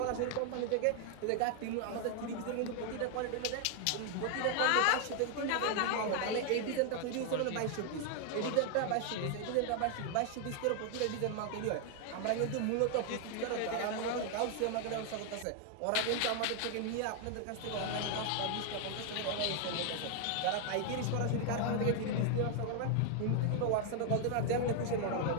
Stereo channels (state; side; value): different; both; correlation 0.00